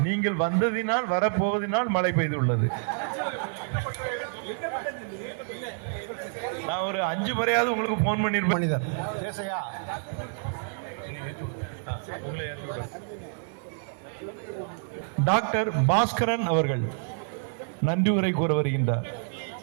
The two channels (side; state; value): left; silent; 57 dB below the other